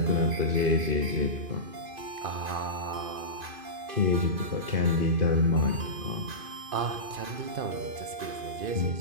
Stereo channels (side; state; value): left; late; 2.5 ms